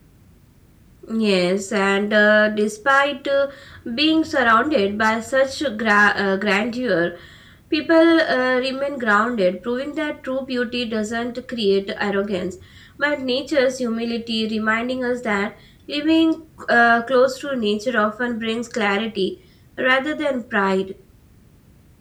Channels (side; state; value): both; identical; correlation 1.00